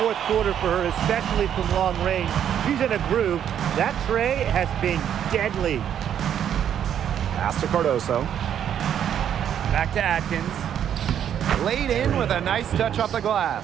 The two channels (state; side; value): quieter; left; 9.5 dB